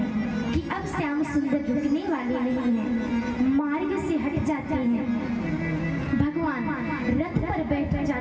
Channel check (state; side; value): identical; both; correlation 1.00